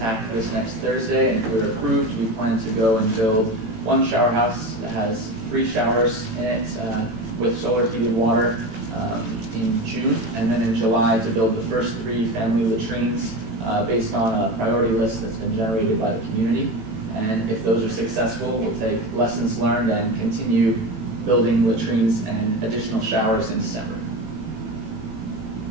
attack this next Thursday, and if we're approved, we plan to go and build one shower house that has 3 showers in it with solar heated water in June, and then in July to build the first 3 family latrines based on a priority list that's been generated by the community. And if those are successful, we'll take lessons learned and continue building latrines and additional showers in December.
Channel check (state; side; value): late; left; 18 ms